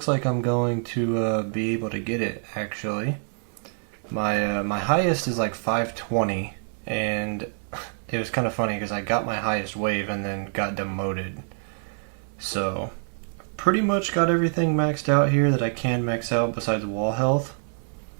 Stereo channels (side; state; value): left; silent; 58 dB below the other